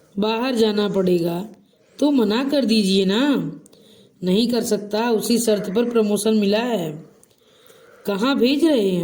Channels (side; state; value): both; identical; correlation 1.00